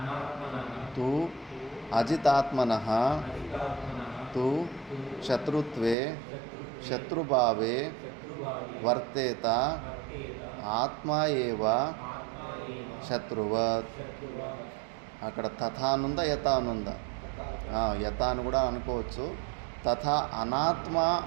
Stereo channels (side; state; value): left; drops out; at 6.0 s